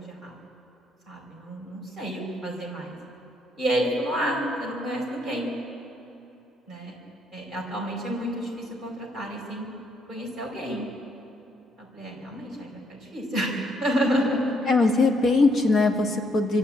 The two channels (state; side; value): normal; both; correlation 0.72